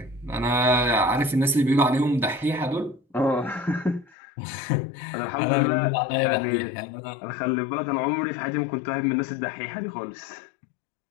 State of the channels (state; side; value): drops out; right; at 4.2 s